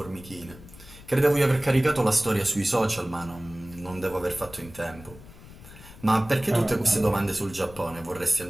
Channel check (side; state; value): left; noise; rumble, 19 dB below the sound